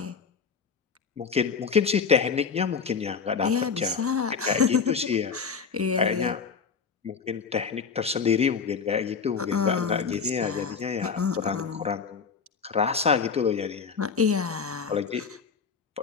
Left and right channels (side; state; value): right; quieter; 5.8 dB